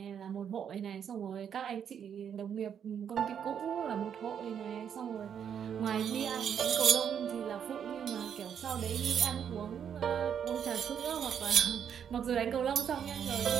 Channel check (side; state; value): left; quieter; 8.2 dB